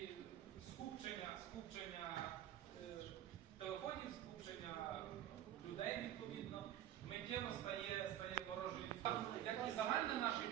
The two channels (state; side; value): quieter; left; 11.8 dB